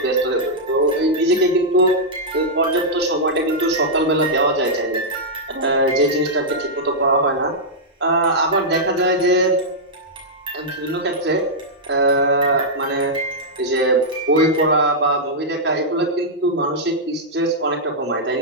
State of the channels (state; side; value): normal; both; correlation -0.08